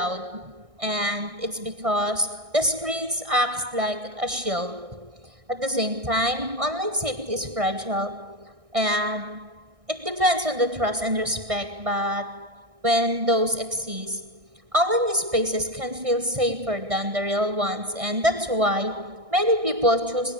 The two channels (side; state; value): left; late; 1.6 ms